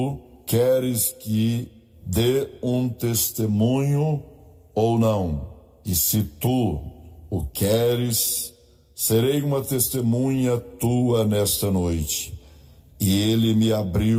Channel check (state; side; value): identical; both; correlation 1.00